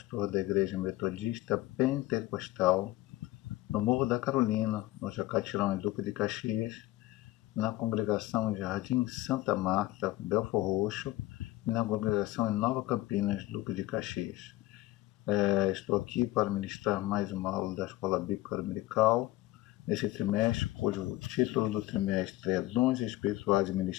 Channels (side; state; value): right; quieter; 17.2 dB